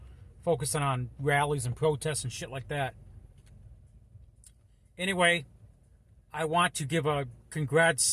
focusing on rallies and protests and shit like that. Anyway, I want to give a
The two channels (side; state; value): both; identical; correlation 1.00